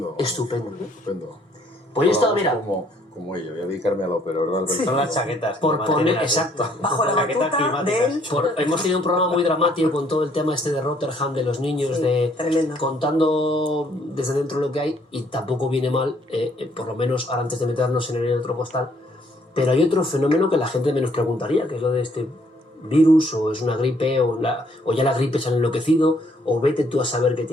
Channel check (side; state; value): both; normal; correlation 0.65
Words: Estupendo. Estupendo. Pues yo he estado, Vamos mira, como ello, voy a dedicarme a la ópera, ¿verdad? Son las chaquetas. que por me poner... mantienen así. Exacto. Bajo la Chaquetas batuta climáticas. del... Hemos tenido un programa muy dramático con todo el tema este de Rotterdam, de los niños, Sí, de tremendo. contando desde dentro lo que hay, y tampoco viene mal, por lo menos ahora antes de meternos en el otro postal. Pero hay otro fenómeno que la gente menos preguntaría, que es lo de este virus, o es una gripe, o ya la gripe se ha enloquecido, o vete tú a saber qué